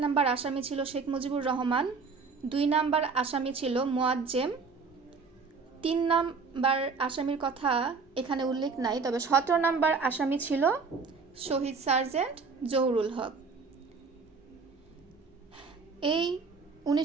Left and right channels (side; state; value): left; quieter; 4.9 dB